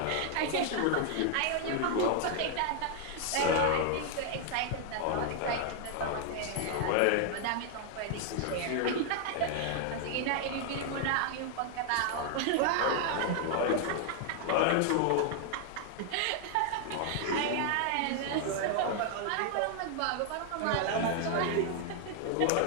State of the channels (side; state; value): both; different; correlation 0.00